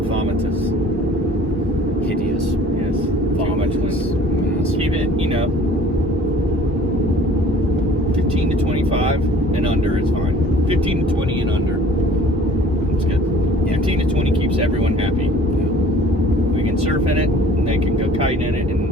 vomitous. Hideous. Yes. Too much wind. Massive. Keep it, 15 to 25 and under is fine. 15 to 20 and under. It's good. Yeah. 15 to 20 keeps everyone happy. Yeah. We can surf in it, and they can go kite in it,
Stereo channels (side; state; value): both; normal; correlation 0.50